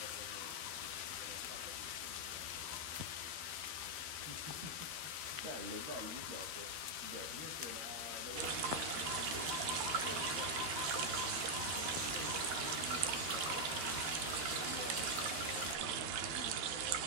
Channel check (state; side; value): late; left; 13 ms